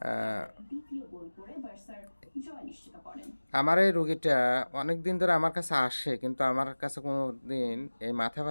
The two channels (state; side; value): inverted; both; correlation -1.00